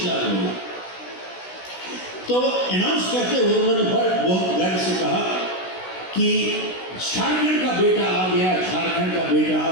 लाख लोग। तो अनाउंस करते हुए उन्होंने बहुत गर्व से कहा कि झारखंड का बेटा आ गया, झारखंड का बेटा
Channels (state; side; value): late; right; 16 ms